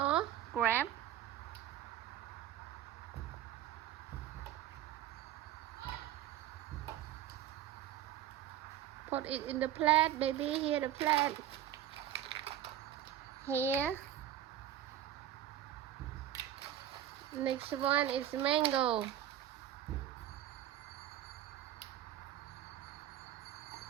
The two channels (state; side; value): quieter; left; 11.7 dB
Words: Grab. Put it in the plate, baby. Here the plate. Here. Next one is mango.